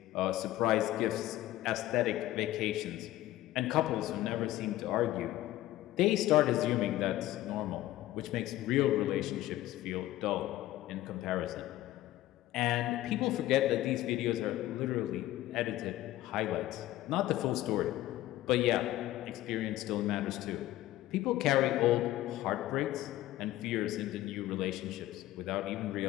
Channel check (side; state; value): right; quieter; 15.2 dB